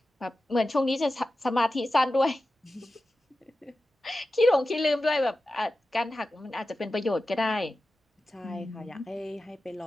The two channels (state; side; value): normal; both; correlation 0.93